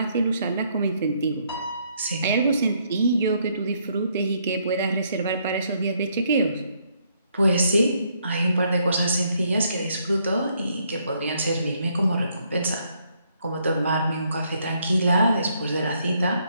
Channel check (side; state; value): both; inverted; correlation -0.71